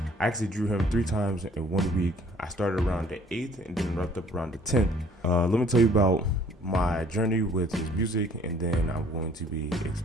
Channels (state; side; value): normal; both; correlation 0.58